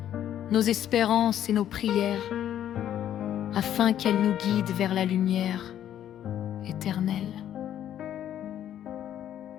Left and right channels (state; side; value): quieter; right; 10.9 dB